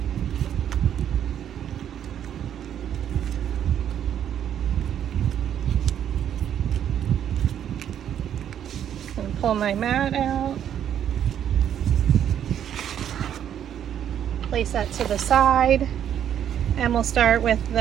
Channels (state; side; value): quieter; left; 9.7 dB